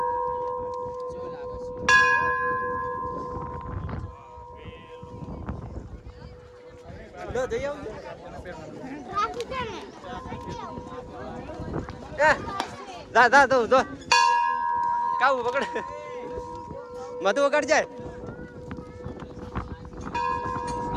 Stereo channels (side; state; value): both; identical; correlation 1.00